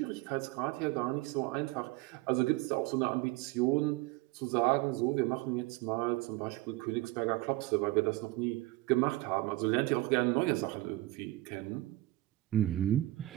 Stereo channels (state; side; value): quieter; left; 18.4 dB